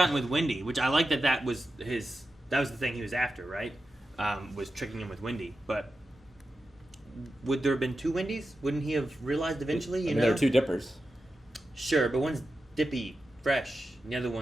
with Wendy, which I like that was his. That was the thing he was after, right? Was tricking him with Wendy, but. Would there have been two Wendy's? Wouldn't he have realized eventually? You know, there are two Dippers. Sure, but one's Dippy fresh, and the other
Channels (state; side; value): normal; both; correlation 0.90